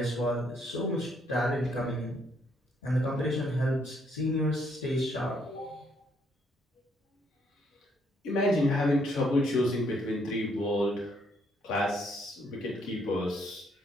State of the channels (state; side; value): normal; both; correlation 0.71